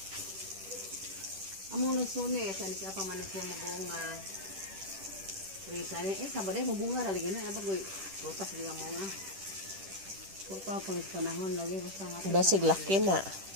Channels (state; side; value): late; left; 10 ms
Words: Among nagsuni, saan ka pa man ito mabunga. Risa niya, sabaday mabunga lagi na. Nabagoy, butas din ang mga. Kung pa pang panahon lagi, basta nga. Basig laki na.